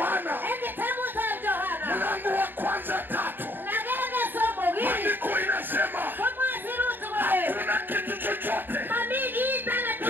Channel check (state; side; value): late; left; 0.094 ms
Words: mlango wa 1:3 maandiko inasema hakuna kitu chochote